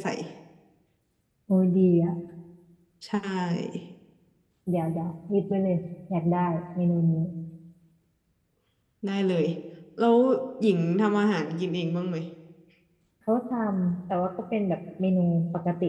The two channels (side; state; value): both; identical; correlation 1.00